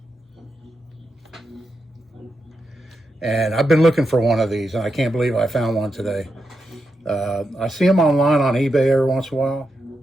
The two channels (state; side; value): normal; both; correlation 0.86